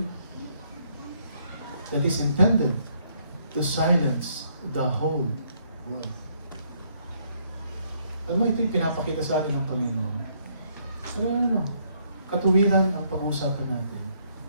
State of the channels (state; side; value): inverted; both; correlation -0.70